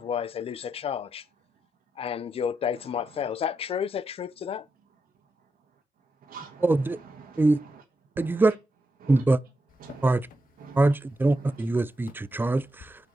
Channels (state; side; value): normal; both; correlation 0.85